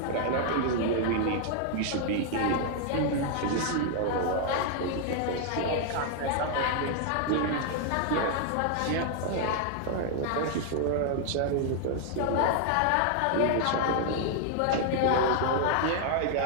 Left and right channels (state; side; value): different; both; correlation 0.00